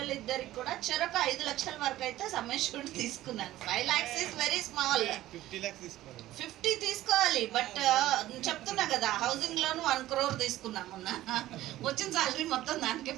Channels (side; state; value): left; quieter; 15.0 dB